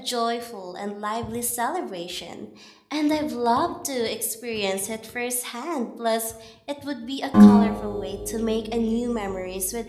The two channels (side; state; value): both; identical; correlation 1.00